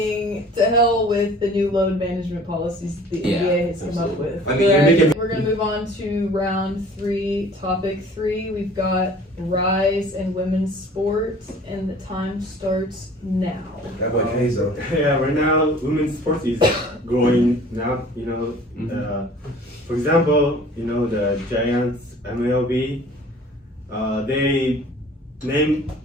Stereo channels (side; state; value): both; normal; correlation 0.49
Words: to hell with the new load management policies the NBA has come up with. I mean, we're going to move on to round 3, topic 3. We've got rise in women's sports, and the time starts now. That boy Keizo. Yeah, right now women's sports is growing now. For example, the Giants MLB, they